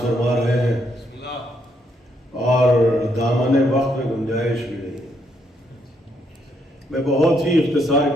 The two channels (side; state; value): both; normal; correlation 0.75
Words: فرما رہے ہیں اور دامن وقت میں گنجائش بھی نہیں۔ میں بہت ہی اختصار